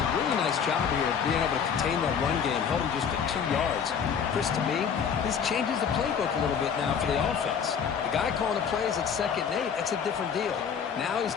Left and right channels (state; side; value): quieter; right; 7.1 dB